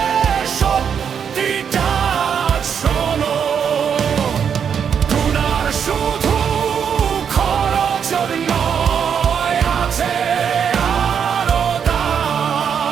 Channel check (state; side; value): quieter; left; 7.5 dB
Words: সত্যিটা শোনো। গুনার শুধু খরচ নয়, আছে আরো